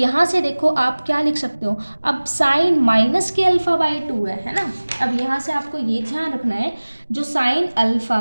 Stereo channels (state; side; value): inverted; both; correlation -1.00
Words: से देखो आप क्या लिख सकते हो, अब साइन माइनस के अल्फा बाय 2 है ना। अब यहाँ से आपको ये ध्यान रखना है जो साइन अल्फा